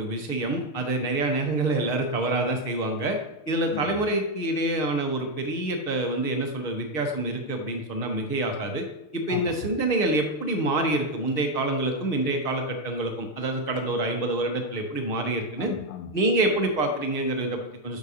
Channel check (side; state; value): right; late; 6.6 ms